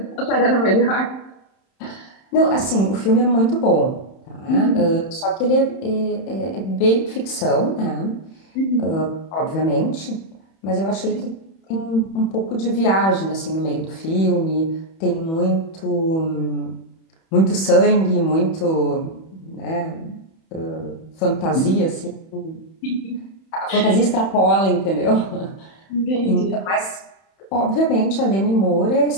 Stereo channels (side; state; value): right; late; 31 ms